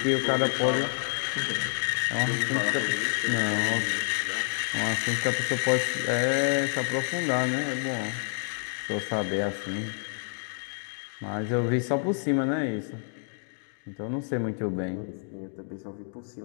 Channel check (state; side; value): silent; right; digital silence